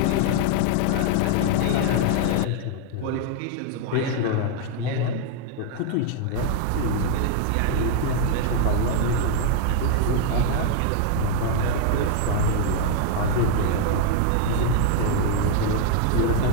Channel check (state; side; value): different; both; correlation 0.00